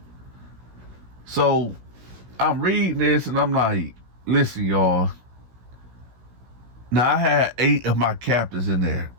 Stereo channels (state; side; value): late; left; 16 ms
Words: So I'm reading this and I'm like, "Listen, y'all. Now I had 8 of my captors in there.